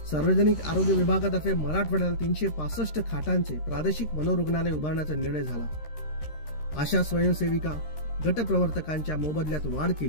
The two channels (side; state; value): right; late; 13 ms